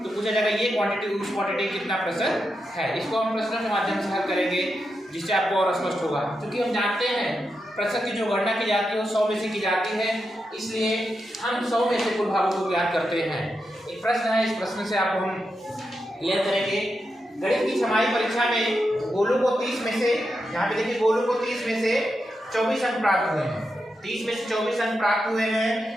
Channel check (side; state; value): both; normal; correlation 0.87